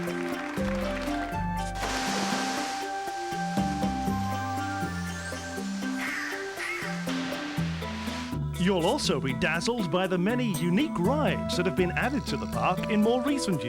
You'll also be dazzled by the many unique rides that have been added to the park in more recent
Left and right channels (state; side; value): identical; both; correlation 1.00